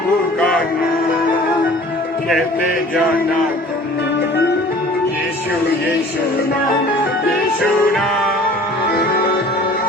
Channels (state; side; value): normal; both; correlation 0.48